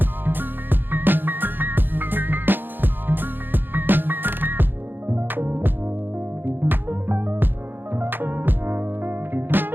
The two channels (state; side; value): late; left; 0.096 ms